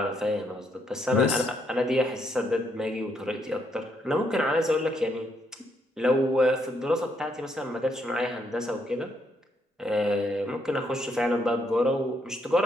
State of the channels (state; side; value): normal; both; correlation 0.74